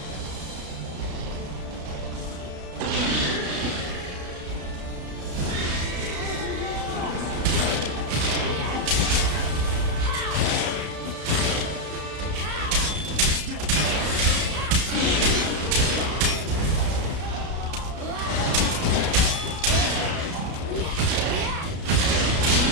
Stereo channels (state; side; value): late; left; 33 ms